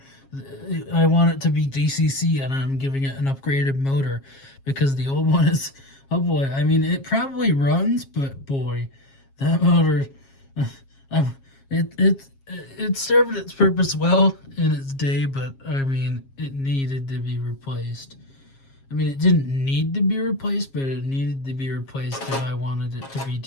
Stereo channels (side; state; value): right; late; 7.4 ms